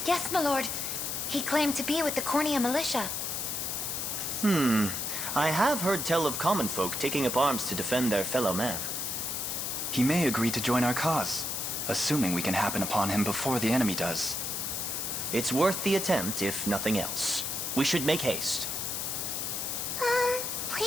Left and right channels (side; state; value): left; noise; hiss, 2 dB below the sound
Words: Yes, my lord. He claimed to be with the Cornea militia. I have heard tell of common folk taking up arms to defend their fellow man. He may agree to join our cause, assuming we can happen upon him before the enemy does. It's worth the attempt, if nothing else. We should make haste.